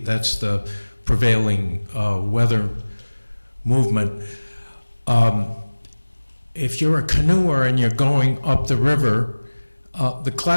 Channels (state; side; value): inverted; both; correlation -1.00